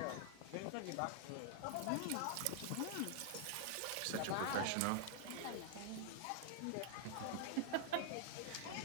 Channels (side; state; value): both; different; correlation 0.00